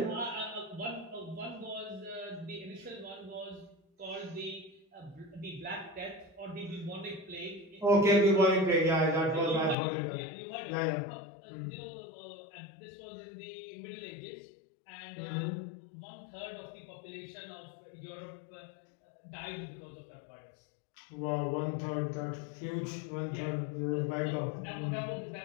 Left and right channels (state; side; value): drops out; right; at 9.8 s